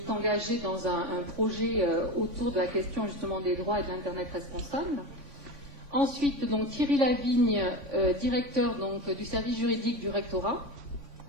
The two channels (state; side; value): late; left; 3.5 ms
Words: engagée dans un projet autour de la question justement des droits et de l'Internet responsable. Ensuite, donc, Thierry Lavigne, directeur donc, du service juridique du rectorat.